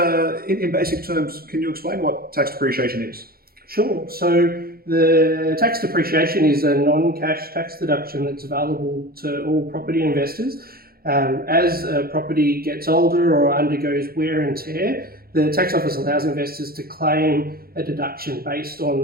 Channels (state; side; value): late; left; 0.44 ms